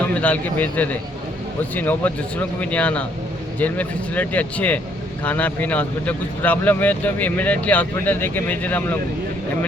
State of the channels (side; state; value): both; normal; correlation 0.67